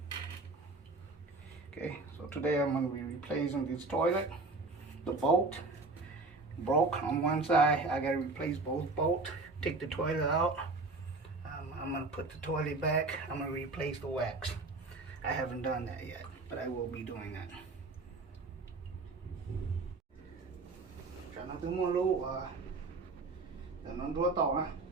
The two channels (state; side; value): quieter; left; 3.5 dB